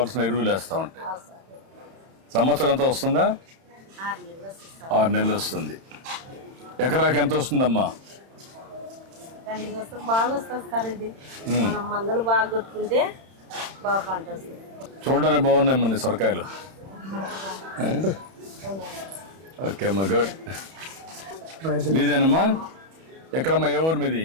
ఎరువులు వేస్తూ ఉంటాయి. సంవత్సరం అంతా వస్తుందా? 6 నెలలు వస్తుంది. ఎకరాకి ఎంత వస్తుందమ్మా? చూడడానికి బాగున్నాయి మన సొరకాయలు. ఓకే అమ్మా, గుడ్. మీదేనమ్మా? ఎక్కడమ్మా? ఏ ఊరు మీది?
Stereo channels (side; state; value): left; late; 31 ms